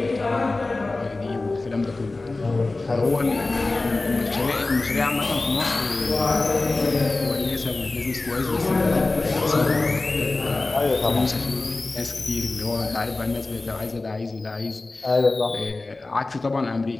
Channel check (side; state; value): right; quieter; 3.3 dB